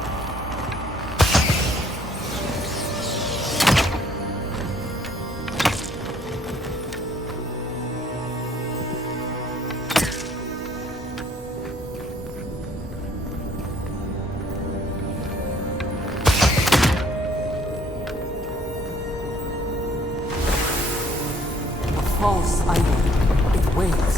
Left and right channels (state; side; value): normal; both; correlation 0.62